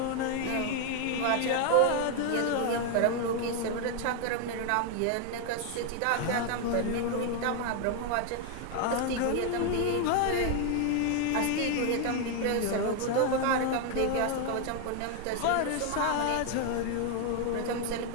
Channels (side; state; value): both; different; correlation 0.00